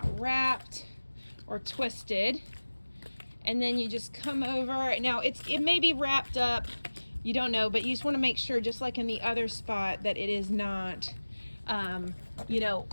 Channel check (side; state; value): both; inverted; correlation -1.00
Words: wrapped or twisted. And then you just come over. Now it may be wrapped up, you don't know, but you just want to make sure, just like in the other spot, that it is not, you know,